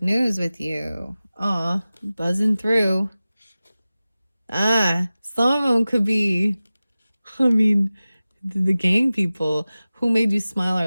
news with you. Aw, buzzing through. Some of them could be, I mean, the gang people. Who made you smile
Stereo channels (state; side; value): inverted; both; correlation -0.96